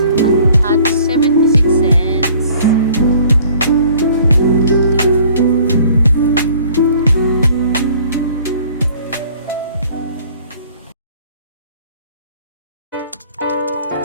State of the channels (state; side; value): inverted; both; correlation -0.54